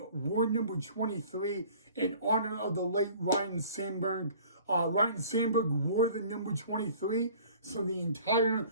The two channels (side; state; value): both; inverted; correlation -0.49